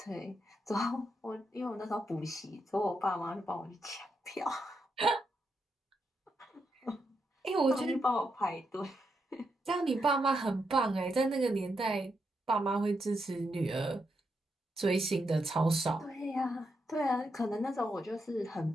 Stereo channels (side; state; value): both; normal; correlation 0.82